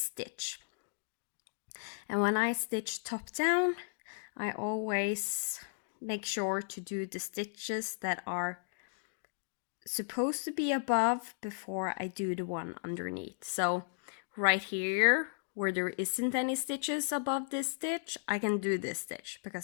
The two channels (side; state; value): right; silent; digital silence